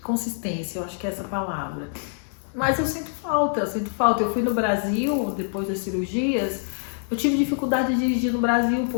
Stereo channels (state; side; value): silent; right; 62 dB below the other